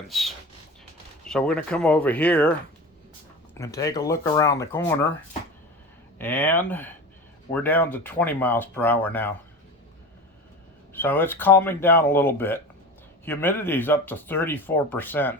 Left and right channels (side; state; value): both; normal; correlation 0.31